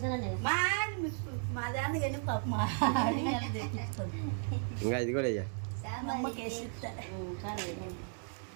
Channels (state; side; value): silent; left; 54 dB below the other